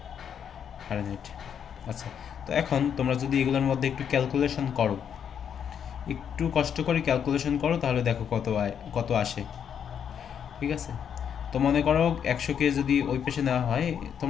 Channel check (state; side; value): quieter; right; 8.2 dB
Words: ফারেনহাইট। আচ্ছা, তো এখন তোমরা যদি এগুলোর মধ্যে একটু ক্যালকুলেশন করো, একটু কষ্ট করে ক্যালকুলেশন করো, তাহলে দেখো কত আসে, ঠিক আছে? তো মনে করো 100কে যদি ওই পেশে নেওয়া হয়,